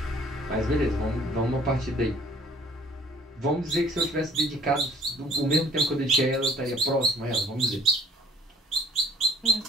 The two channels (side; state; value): both; normal; correlation 0.54